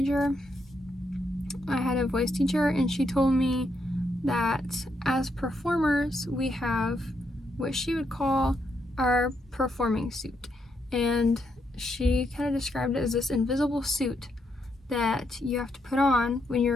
I had a voice teacher and she told me that as performers we have what she would call our performing suit, and she kind of described it as this invisible suit that you have to put on when you're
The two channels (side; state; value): both; normal; correlation 0.79